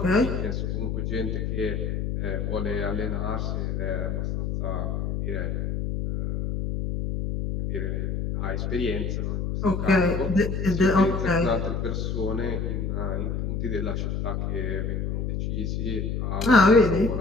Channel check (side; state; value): left; noise; hum, 1 dB below the sound